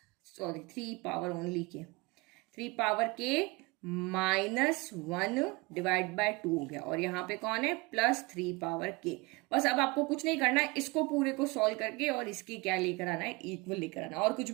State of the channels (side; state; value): left; quieter; 25.2 dB